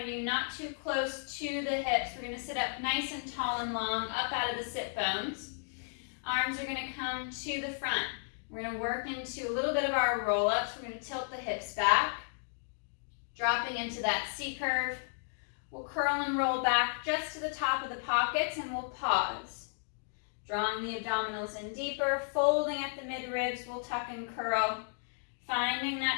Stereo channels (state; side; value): silent; right; digital silence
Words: of you, not too close to the hips. We're going to sit up nice and tall and long, up out of the sit bones. Arms are going to come to the front. We're going to work into a little bit of our roll-ups. We're going to tilt the hips back, dropping into that C curve. We'll curl and roll back just to the top of the pockets, and we'll pause. Drawing the abdominals in deeper, folding at the mid-ribs, we'll tuck and curl. Finding